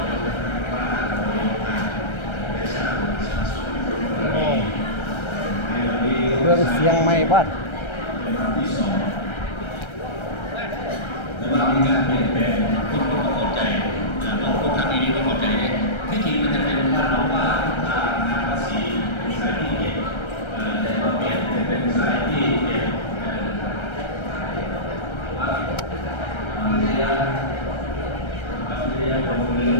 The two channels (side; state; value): right; late; 1.3 ms